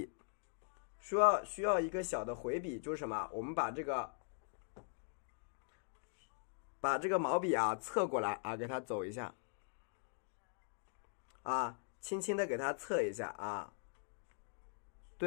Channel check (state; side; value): silent; right; digital silence